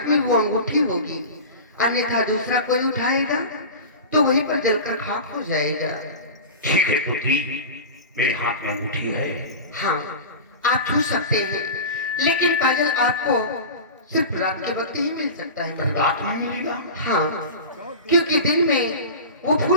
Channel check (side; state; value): both; inverted; correlation -0.30